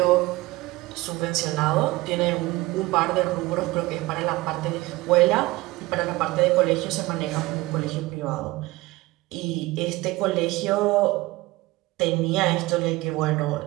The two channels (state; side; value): quieter; left; 20.4 dB